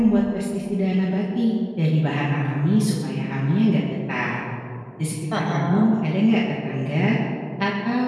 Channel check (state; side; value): identical; both; correlation 1.00